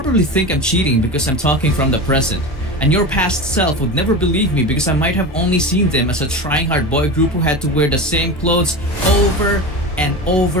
think I'm cheating because I'm talking from the present. And your past self would never believe me because I might have only seen them as a trying hard boy group who had to wear the same clothes over and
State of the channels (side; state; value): both; normal; correlation 0.26